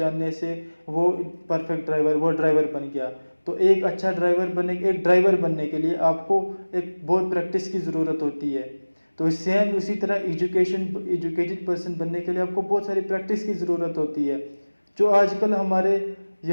से वो परफेक्ट ड्राइवर, वो ड्राइवर बन गया। तो एक अच्छा ड्राइवर बनने के लिए आपको एक बहुत प्रैक्टिस की ज़रूरत होती है। तो सेम उसी तरह एजुकेटेड पर्सन बनने के लिए आपको बहुत सारी प्रैक्टिस की ज़रूरत होती है, जो आजकल हमारे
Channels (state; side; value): inverted; both; correlation -1.00